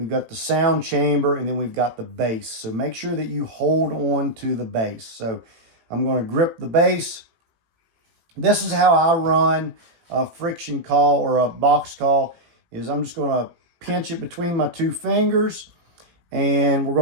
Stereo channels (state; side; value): late; left; 18 ms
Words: got the sound chamber, and then we've got the base. So make sure that you hold on to the base. So I'm going to grip the base. This is how I run a friction call or a box call, is I'm just going to pinch it between my two fingers, and we're